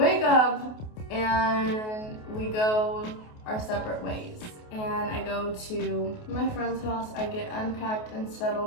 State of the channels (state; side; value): late; right; 28 ms